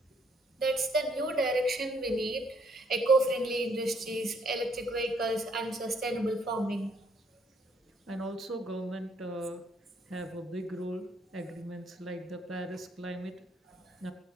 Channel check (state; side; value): normal; both; correlation 0.68